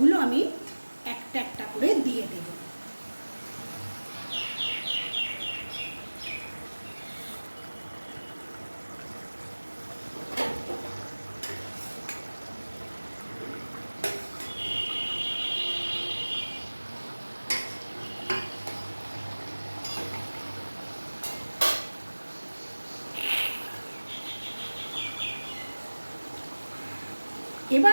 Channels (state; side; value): inverted; both; correlation -1.00